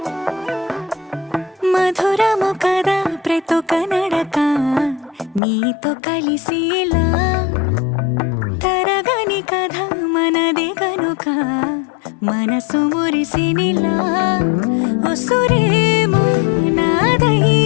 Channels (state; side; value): drops out; right; at 5.4 s